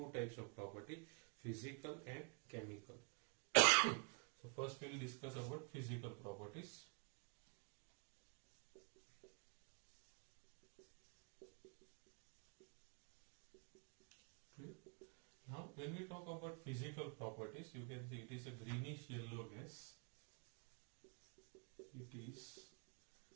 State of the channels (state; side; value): quieter; left; 36.9 dB